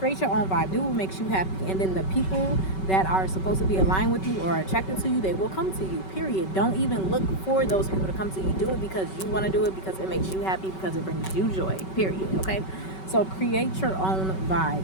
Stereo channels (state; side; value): late; right; 5.3 ms